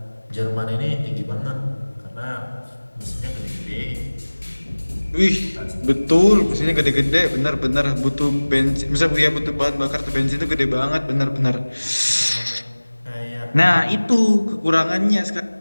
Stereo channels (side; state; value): both; inverted; correlation -1.00